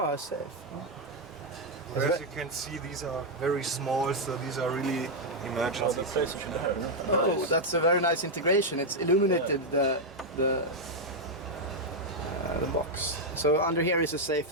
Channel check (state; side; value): normal; both; correlation 0.00